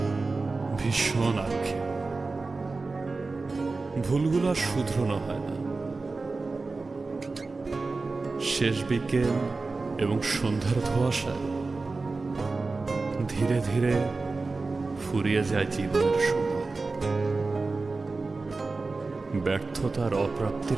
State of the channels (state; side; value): quieter; left; 3.8 dB